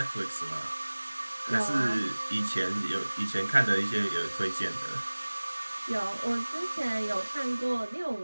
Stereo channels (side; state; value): both; inverted; correlation -1.00